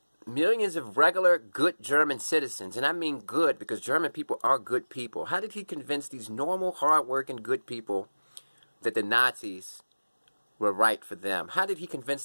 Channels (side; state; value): both; inverted; correlation -1.00